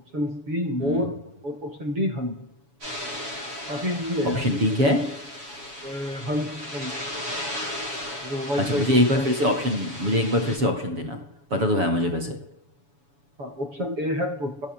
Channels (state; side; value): late; left; 7.1 ms